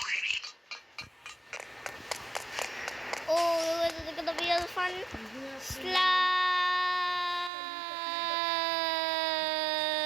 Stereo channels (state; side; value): drops out; left; at 7.5 s